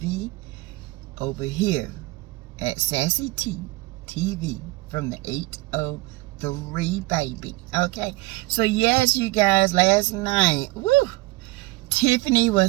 over here at Sassy T TV from the 803, baby. Okay, so yes, you guys, last night, woo, Tiffany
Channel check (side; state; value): left; quieter; 21.7 dB